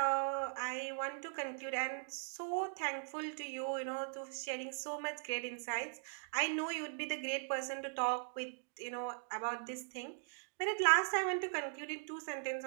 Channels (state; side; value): silent; left; digital silence